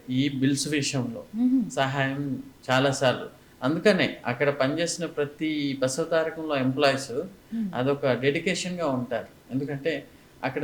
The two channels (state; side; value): identical; both; correlation 1.00